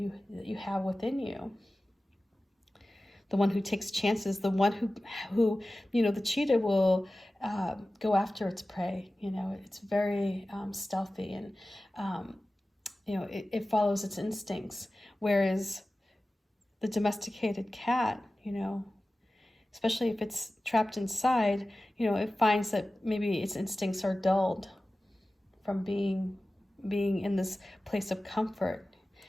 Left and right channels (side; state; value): both; normal; correlation 0.96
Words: have within you. The one who takes chances, the one who you know, the cheetah will go after its prey. You know, it's very stealthy and, you know, it follows its instincts. Whereas the domesticated cat, you know, especially if it's trapped inside, you know, it finds that maybe its instincts are dulled from being in this place of comfort.